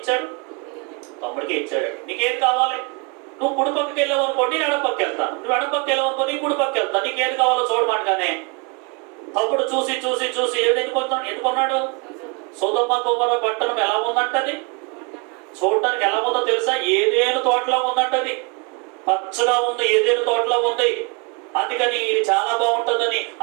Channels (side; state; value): left; quieter; 31.9 dB